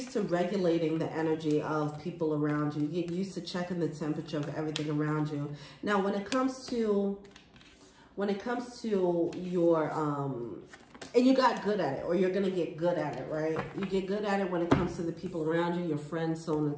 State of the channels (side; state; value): both; identical; correlation 1.00